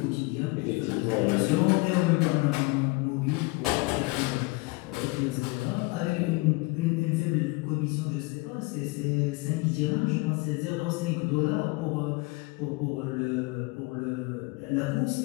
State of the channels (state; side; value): quieter; right; 25.7 dB